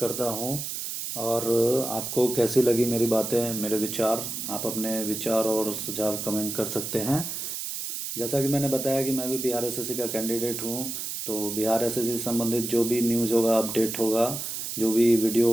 हूँ। और आपको कैसी लगी मेरी बातें, मेरे विचार, आप अपने विचार और सुझाव कमेंट कर सकते हैं। जैसा कि मैंने बताया कि मैं भी बिहार एसएससी का कैंडिडेट हूँ, तो बिहार एसएससी से संबंधित जो भी न्यूज़ होगा, अपडेट होगा, जो भी वीडियो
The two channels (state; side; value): noise; right; hiss, 5 dB below the sound